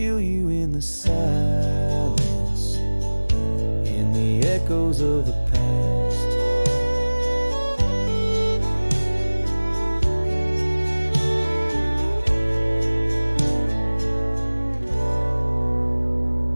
you in the silence, in the echoes of the past.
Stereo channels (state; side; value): inverted; both; correlation -1.00